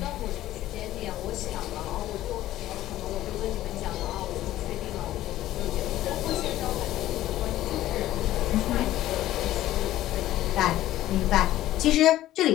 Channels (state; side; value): quieter; right; 14.3 dB